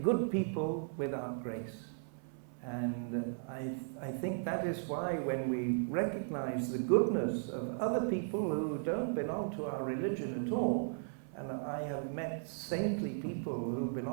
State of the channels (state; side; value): silent; left; 54 dB below the other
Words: people without grace. And I think that is why when we recognize the goodness of other people who don't belong to our religion at all, and I have met saintly people who